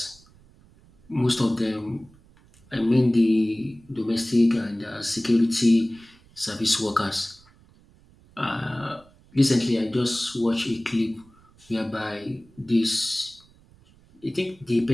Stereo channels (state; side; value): noise; right; rumble, 28 dB below the sound